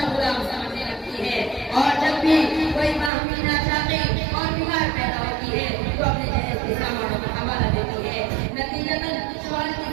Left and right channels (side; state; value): left; drops out; at 3.1 s